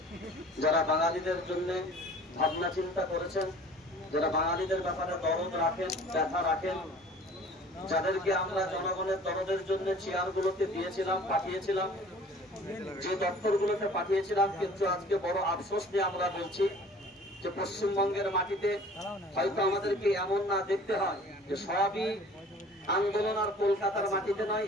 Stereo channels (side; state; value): both; normal; correlation 0.48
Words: যারা বাঙালিদের জন্য ভাবনা চিন্তা করেছেন, যারা বাঙালিদের ব্যাপারে দরদ রাখেন, ব্যথা রাখেন, যাদেরকে আমরা জনগণের দরদের জন্য চেয়ারগুলোতে দিয়েছিলাম, পাঠিয়েছিলাম, যে দপ্তরগুলোতে পাঠিয়েছিলাম, কিন্তু আজকে বড় আফসোস নিয়ে আমরা বলছি যে পশ্চিমবঙ্গের মাটিতে হয়তো আমাদেরকে এমন না দেখতে হয় যে সবই আন্দোলন আর কলকাতার মাটিতে নয়,